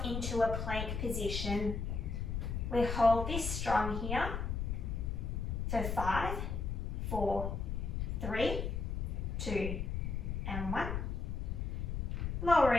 into a plank position. We hold this strong here for 5, 4, 3, 2, and 1.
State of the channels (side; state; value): left; noise; rumble, 2 dB below the sound